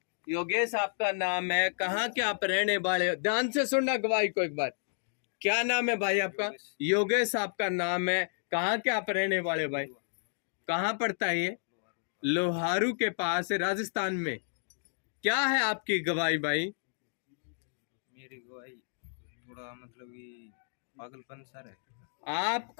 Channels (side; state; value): right; silent; digital silence